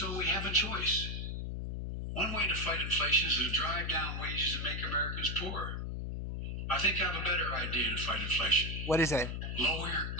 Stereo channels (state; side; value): noise; left; hum, 4 dB below the sound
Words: we have a choice. One way to fight inflation is to drive down wages and make Americans poorer. I think I have a better idea to fight inflation. What is it? Lower your